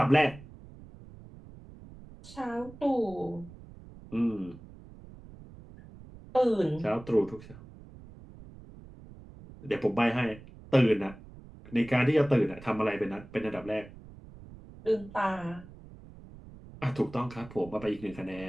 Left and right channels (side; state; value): right; noise; rumble, 18 dB below the sound